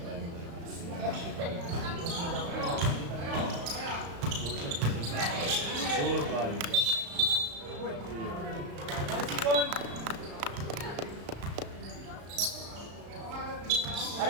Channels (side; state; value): left; late; 35 ms